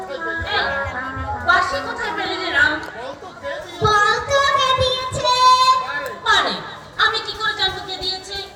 এই, বাঁশি কোথায় পেলি রে রাম? বলতো কে দিয়েছে? মানে আমি কি করে জানবো কে দিয়েছে?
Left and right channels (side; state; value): both; identical; correlation 1.00